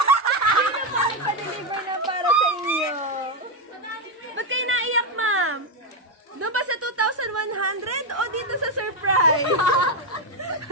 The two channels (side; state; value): both; normal; correlation 0.05